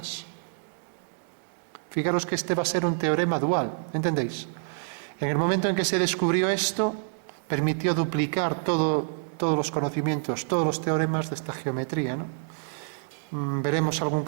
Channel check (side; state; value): left; silent; 60 dB below the other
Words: Fijaros que este va a ser un teorema dual, ¿entendéis? En el momento en que se descubrió esto, permitió duplicar todos los conocimientos, todos los teoremas de esta geometría, ¿no? Veremos algún